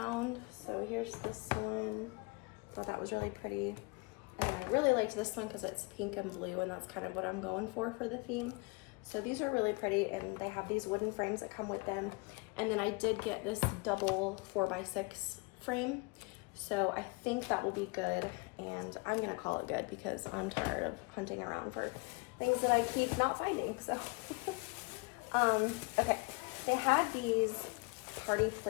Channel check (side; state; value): right; quieter; 28.7 dB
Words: So here's this one. Thought that was really pretty. And I really liked this one because it's pink and blue, and that's kind of what I'm going for the theme. So these are really pretty, and they have these wooden frames that come with them. And then I did get this double 4x6 frame. So I think that will be good, and I'm gonna call it good because I'm tired of hunting around for things that I keep not finding, so. Okay, they had these party